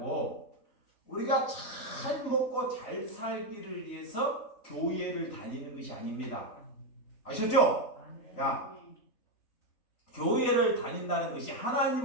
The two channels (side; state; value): right; late; 4.0 ms